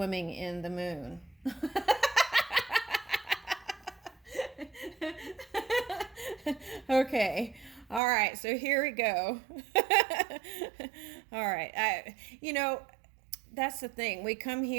in the moon. Okay. All right, so here we go. All right. That's the thing. We come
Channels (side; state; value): left; drops out; at 8.0 s